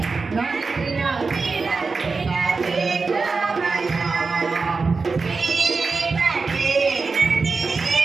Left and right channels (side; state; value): left; quieter; 4.3 dB